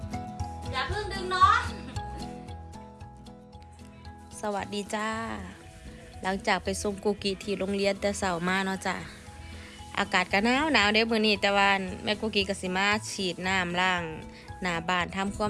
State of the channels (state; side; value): identical; both; correlation 1.00